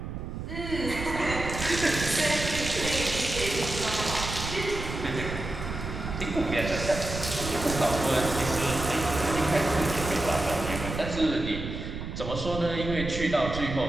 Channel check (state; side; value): noise; right; rumble, 6 dB below the sound